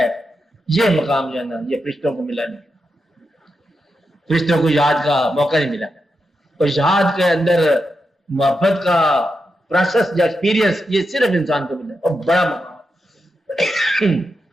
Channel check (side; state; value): both; normal; correlation 0.87